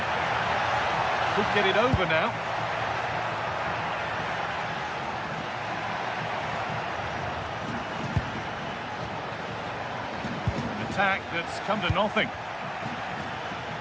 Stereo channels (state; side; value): identical; both; correlation 1.00